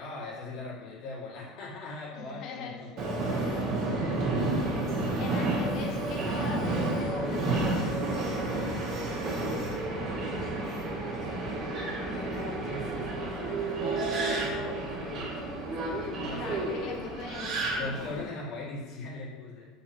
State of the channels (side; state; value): both; normal; correlation 0.38